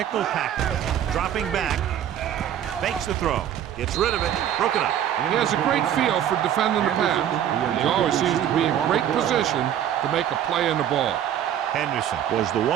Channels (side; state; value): left; quieter; 10.4 dB